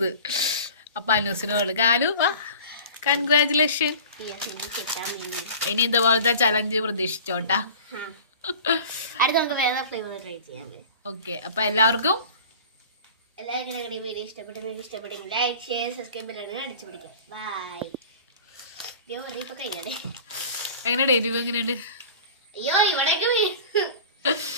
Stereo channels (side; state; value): both; inverted; correlation -0.41